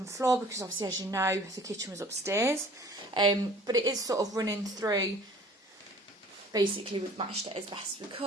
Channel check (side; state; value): both; normal; correlation 0.50